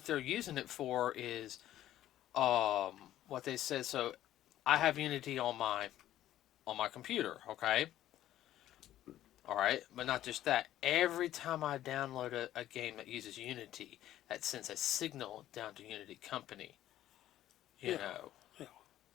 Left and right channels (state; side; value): quieter; right; 13.0 dB